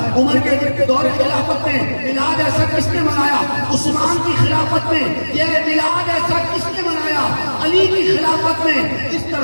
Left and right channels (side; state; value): both; inverted; correlation -1.00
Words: عمر کے دور خلافت میں بلال ایسا کس نے منایا؟ عثمان کی خلافت میں یہ بلال ایسا کس نے منایا؟ علی کی خلافت میں اس